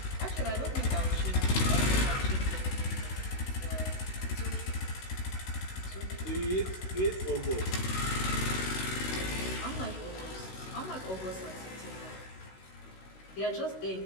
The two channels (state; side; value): late; right; 16 ms